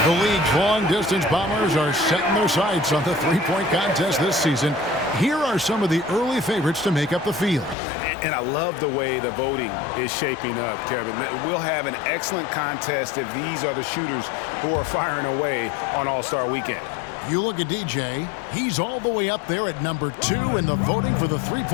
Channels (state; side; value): drops out; right; at 7.8 s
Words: The league's long-distance Bombers are setting their sights on the three-point contest this season. Here are some of the early favorites to make up the field. And I love the way the voting is shaping up, Kevin. We'll have an excellent contest if these are the shooters who are firing away on All-Star Weekend. You look at DJ, he's all the way up there at number 2 in the voting for the